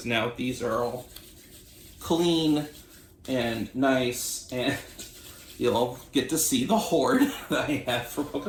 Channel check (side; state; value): both; identical; correlation 1.00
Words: now these are all clean and nice, and you'll get to see the hoard that I have for